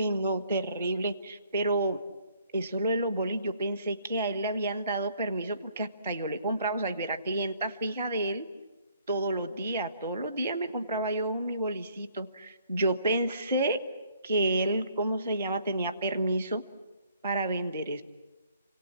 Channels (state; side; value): inverted; both; correlation -0.63